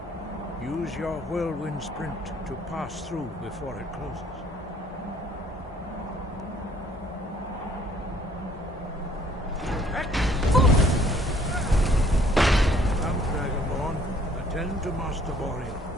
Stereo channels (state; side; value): normal; both; correlation 0.61